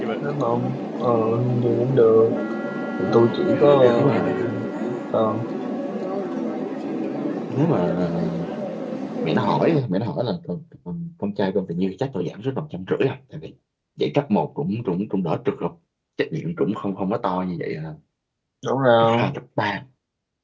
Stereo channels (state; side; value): identical; both; correlation 1.00